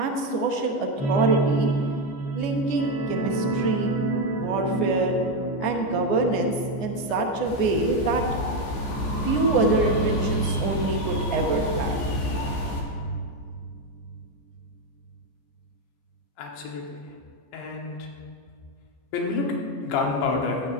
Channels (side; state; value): right; late; 14 ms